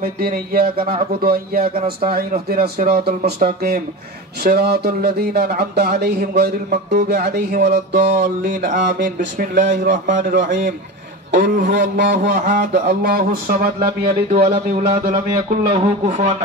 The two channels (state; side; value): normal; both; correlation 0.26